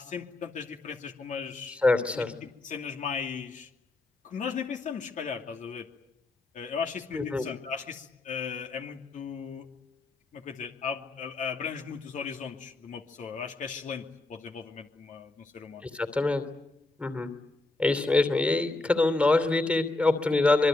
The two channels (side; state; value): right; quieter; 3.0 dB